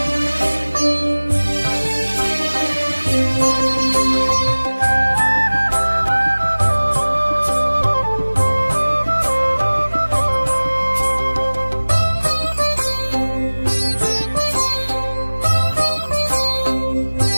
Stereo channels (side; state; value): both; inverted; correlation -1.00